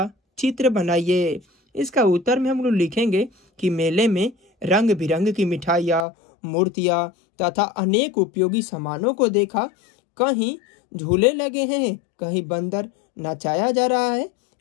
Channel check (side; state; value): right; drops out; at 6.1 s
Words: चित्र बनाइए। इसका उत्तर में हम लोग लिखेंगे कि मेले में रंग बिरंग की मिठाइयाँ, मूर्तियाँ तथा अनेक उपयोगी सामानों को देखा। कहीं झूले लगे हैं, कहीं बंदर नचाया जा रहा है,